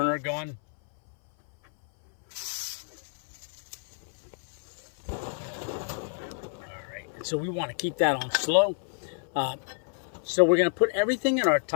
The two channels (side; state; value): right; silent; 57 dB below the other